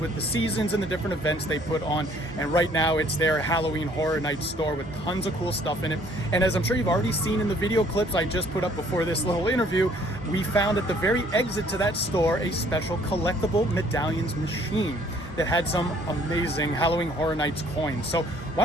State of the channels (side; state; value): both; normal; correlation 0.59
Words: with the seasons and the different events they put on. And right now it's their Halloween Horror Night store with tons of cool stuff in it. And as I'm sure you've already seen in the video clips I just put up before this little interview, we found at the very exit to that store a special Collectible Medallions machine that had some amazing Halloween Horror Nights coins. So why